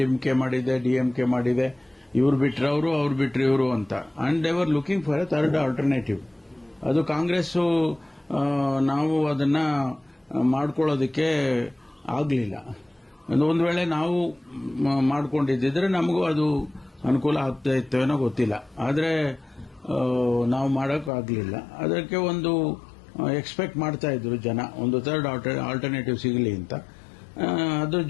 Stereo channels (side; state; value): right; drops out; at 21.1 s